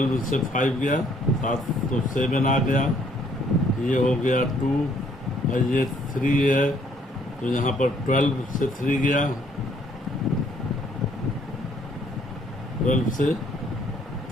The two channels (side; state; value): both; normal; correlation 0.65